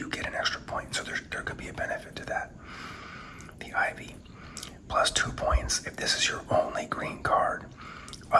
get an extra point. So there could be a benefit to that. The ivy, plus 2 points if this is your only green card.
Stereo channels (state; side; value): identical; both; correlation 1.00